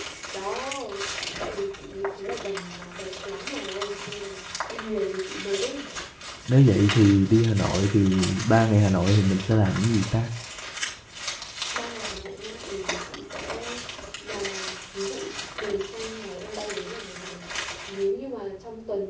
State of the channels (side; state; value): both; identical; correlation 1.00